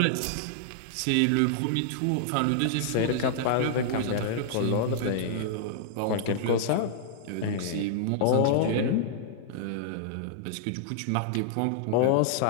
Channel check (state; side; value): different; both; correlation -0.01